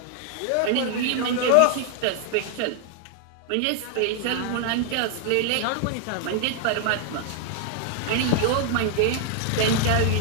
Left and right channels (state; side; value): different; both; correlation 0.00